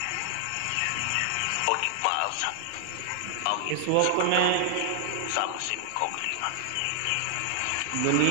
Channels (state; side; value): different; both; correlation 0.00